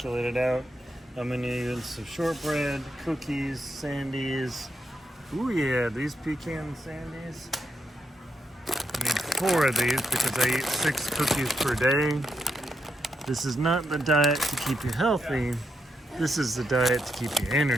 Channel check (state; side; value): normal; both; correlation 0.82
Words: out. I'm gonna need some shortbread, cookies, sandies. Ooh yeah, these pecan sandies. I need 4 of these because I eat 6 cookies per day. This is not the diet to keep you healthy. This is the diet to keep you